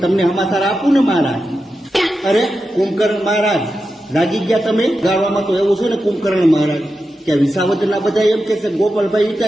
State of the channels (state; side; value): normal; both; correlation 0.90